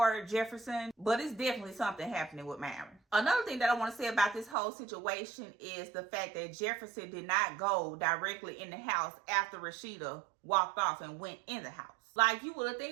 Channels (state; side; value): drops out; left; at 4.5 s